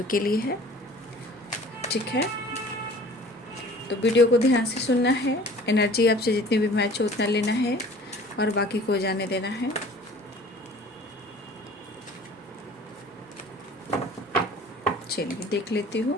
के लिए है, ठीक है। तो वीडियो को ध्यान से सुनना है। एनर्जी आपसे जितनी भी मैच हो उतना लेना है और बाकी को जाने देना है। चलिए देख लेती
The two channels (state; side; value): normal; both; correlation 0.47